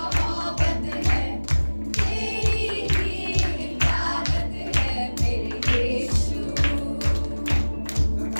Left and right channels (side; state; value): both; inverted; correlation -1.00